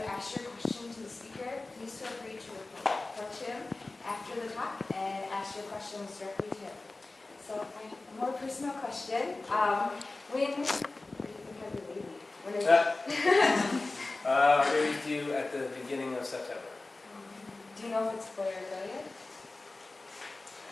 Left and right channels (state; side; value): quieter; right; 3.2 dB